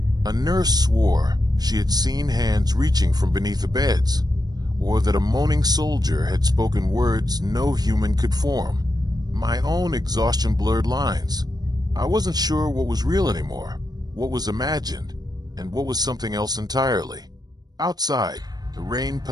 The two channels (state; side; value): late; left; 0.19 ms